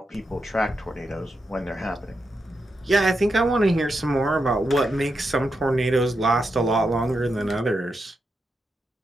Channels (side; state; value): both; normal; correlation 0.85